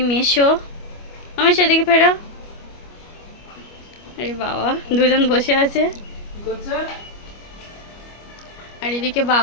মেশো আমার সেদিকে ফেরো। আরে বাবা, দুজন বসে আছে। আর এদিকে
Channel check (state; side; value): late; right; 25 ms